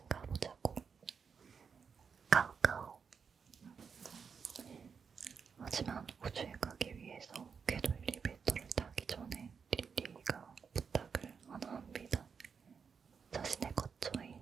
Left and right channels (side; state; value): left; quieter; 6.1 dB